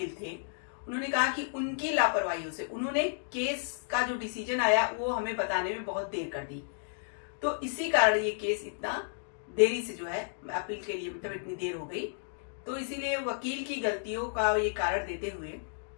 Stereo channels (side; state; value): right; silent; digital silence